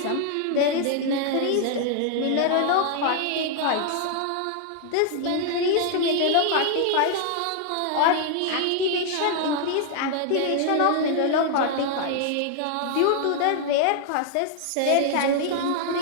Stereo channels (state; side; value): different; both; correlation 0.00